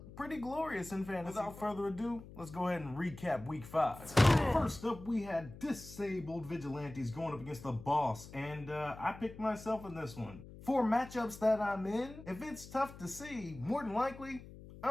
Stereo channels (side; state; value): left; noise; hum, 16 dB below the sound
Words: pretty glorious in fantasy. Without further ado, let's go ahead and recap week 5. First up, we had disabled vigilantes going up against the boss, and I picked myself in this one. For matchups that I'm in, if it's tough to see, more than likely,